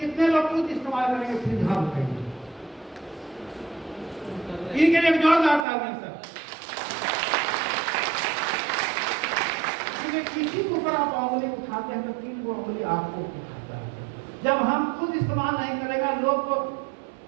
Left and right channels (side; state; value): left; drops out; at 5.7 s